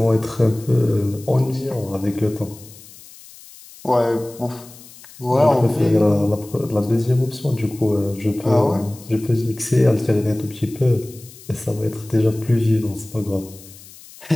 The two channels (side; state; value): left; noise; hiss, 20 dB below the sound